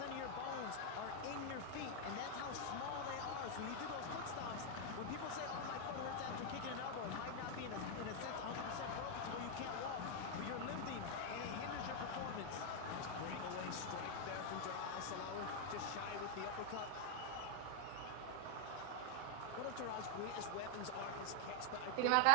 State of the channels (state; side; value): different; both; correlation 0.00